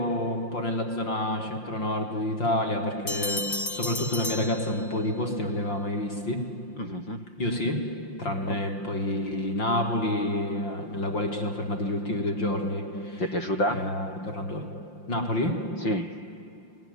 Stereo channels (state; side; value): late; right; 5.7 ms